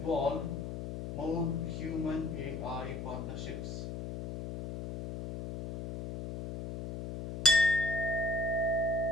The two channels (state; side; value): noise; left; hum, 7 dB below the sound